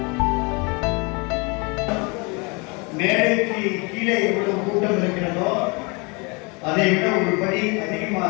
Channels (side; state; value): right; quieter; 30.0 dB